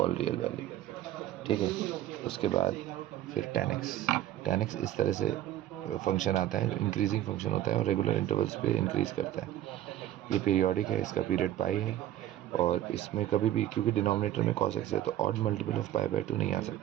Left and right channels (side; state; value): left; quieter; 12.7 dB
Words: real value, ठीक है। उसके बाद फिर tan x इस तरह से फंक्शन आता है, इंक्रीजिंग फंक्शन होता है और रेगुलर इंटरवल्स पे इंक्रीज़ करता है। ये पीरियोडिक है, इसका पीरियड पाई है, और इसमें कभी भी, क्योंकि डिनोमिनेटर में cos x है, तो ऑड मल्टीपल ऑफ π/2 नहीं आ